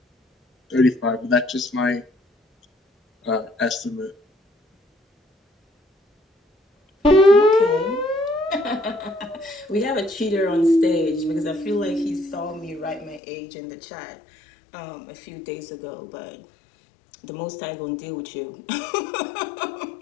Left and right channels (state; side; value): drops out; right; at 13.2 s